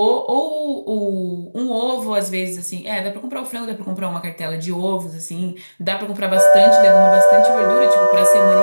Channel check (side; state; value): both; inverted; correlation -1.00